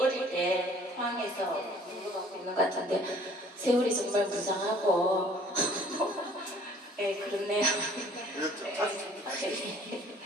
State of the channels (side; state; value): both; normal; correlation 0.55